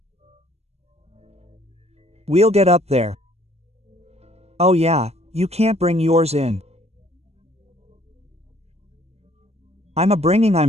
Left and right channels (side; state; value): left; late; 0.31 ms